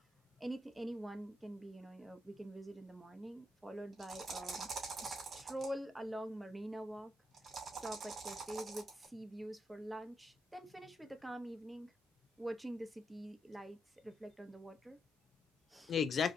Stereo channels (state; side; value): normal; both; correlation 0.82